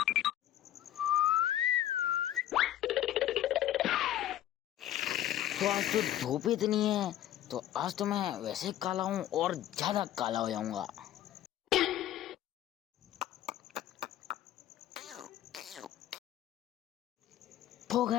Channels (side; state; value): right; quieter; 12.6 dB